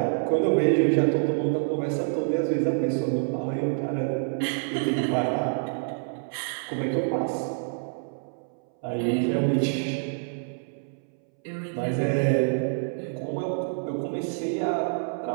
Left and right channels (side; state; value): left; silent; 60 dB below the other